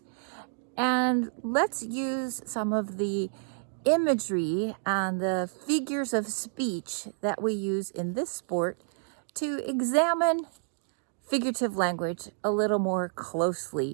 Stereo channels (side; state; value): left; silent; digital silence